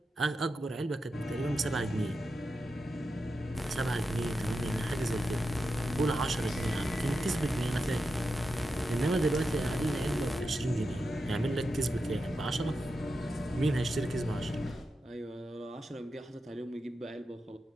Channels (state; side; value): normal; both; correlation 0.89